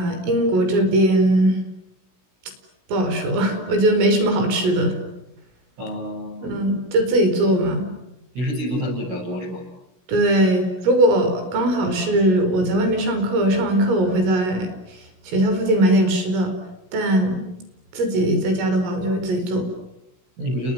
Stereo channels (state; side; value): late; left; 16 ms